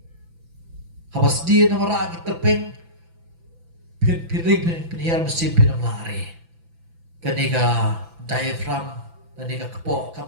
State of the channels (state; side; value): late; left; 6.0 ms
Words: Habas din nama ra terpeng piring pin hian mesin pinam lari. Kaniga diaphragm kaniga kapok